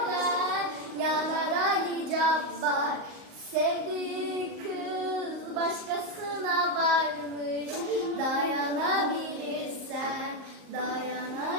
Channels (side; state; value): left; late; 38 ms